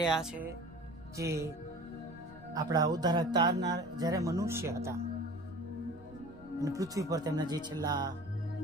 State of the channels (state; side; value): noise; left; rumble, 21 dB below the sound